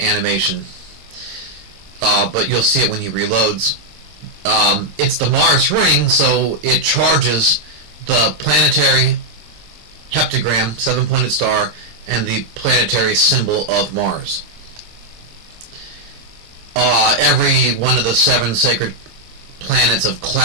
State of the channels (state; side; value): late; left; 26 ms